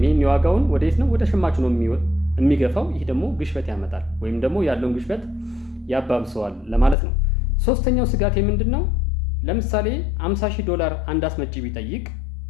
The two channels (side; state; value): right; drops out; at 7.0 s